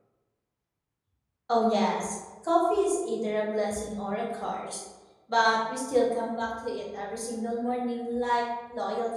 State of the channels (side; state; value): both; identical; correlation 1.00